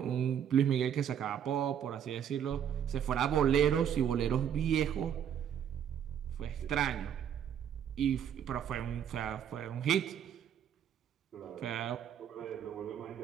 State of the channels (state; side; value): quieter; left; 9.0 dB